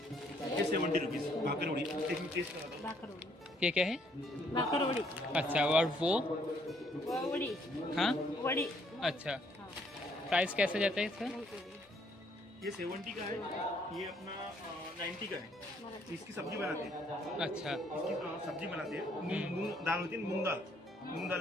ये 70 रुपीस भाकरवड़ी। एक टेस्ट करा दो। भाकरवड़ी ये क्या है? भाकरवड़ी। अच्छा, और वो वड़ी। हाँ, वड़ी। अच्छा। प्राइस कैसे जाता है इसका? ये 70 का है, ये अपना 90 का है। इसकी सब्जी बनाते हैं। अच्छा, इसकी सब्जी बनाते हैं। मूंग दाल होती है, मूंग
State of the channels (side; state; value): both; normal; correlation 0.67